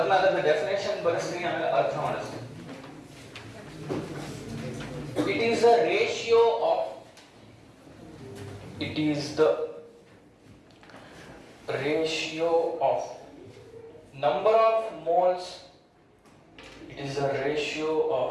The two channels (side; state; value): both; identical; correlation 1.00